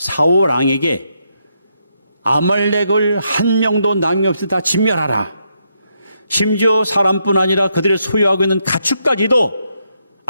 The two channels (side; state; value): both; inverted; correlation -0.79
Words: 왕에게 아말렉을 한 명도 남김없이 다 진멸하라. 심지어 사람뿐 아니라 그들의 소유하고 있는 가축까지도